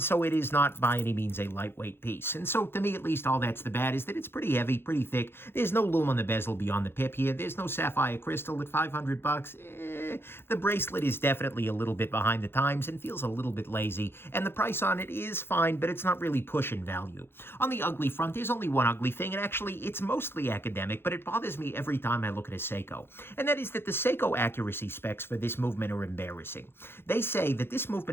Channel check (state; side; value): late; right; 0.11 ms